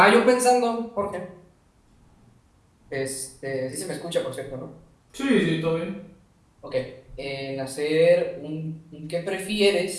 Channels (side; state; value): both; identical; correlation 1.00